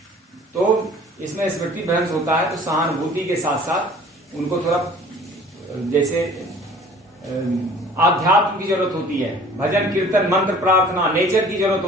तो इसमें स्मृति भ्रंश होता है। तो सहानुभूति के साथ साथ उनको थोड़ा जैसे आध्यात्म की जरूरत होती है, भजन कीर्तन मंत्र प्रार्थना, नेचर की जरूरत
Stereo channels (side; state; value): both; normal; correlation 0.49